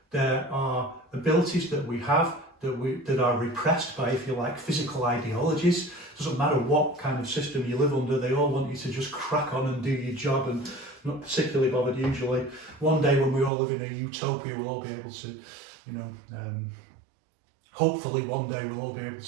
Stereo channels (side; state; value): left; drops out; at 13.5 s